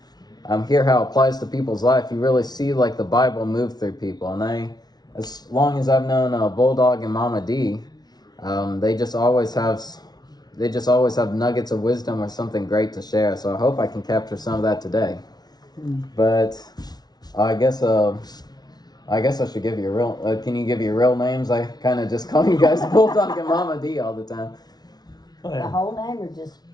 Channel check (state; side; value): late; right; 0.19 ms